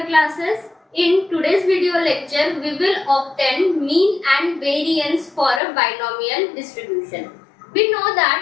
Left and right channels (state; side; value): drops out; right; at 5.6 s